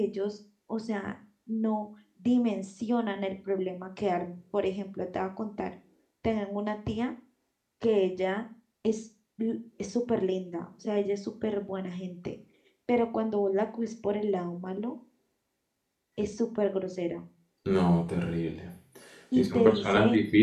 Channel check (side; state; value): both; identical; correlation 1.00